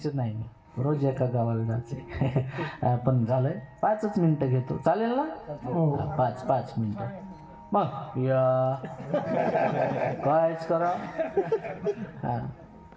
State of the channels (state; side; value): identical; both; correlation 1.00